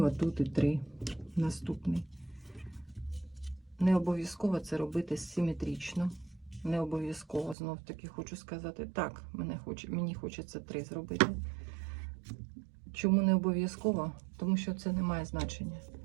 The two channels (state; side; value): drops out; left; at 7.6 s